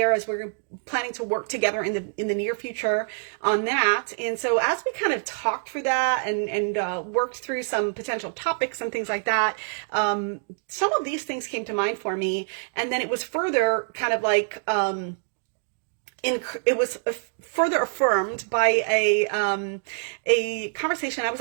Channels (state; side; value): silent; left; digital silence